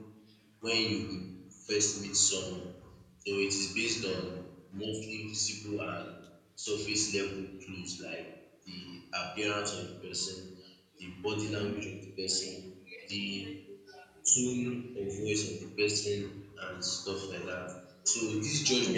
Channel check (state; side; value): identical; both; correlation 1.00